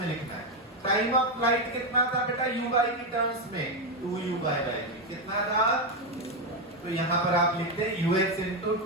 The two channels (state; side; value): normal; both; correlation 0.07